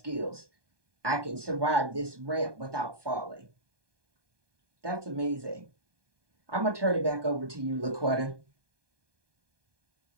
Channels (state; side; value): late; left; 1.2 ms